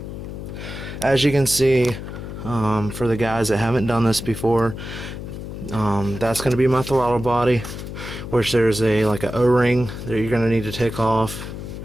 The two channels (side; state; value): left; noise; hum, 9 dB below the sound